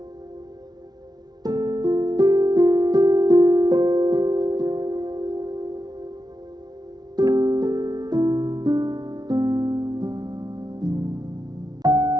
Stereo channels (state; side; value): late; left; 0.19 ms